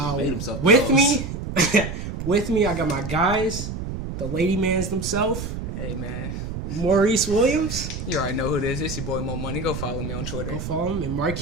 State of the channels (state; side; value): noise; right; rumble, 6 dB below the sound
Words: With me, I got my guys, the lady mans themselves. Hey, man. Maurice Williams. You already know who it is. It's your boy Mo Money. Go follow me on Twitter. Go follow him. And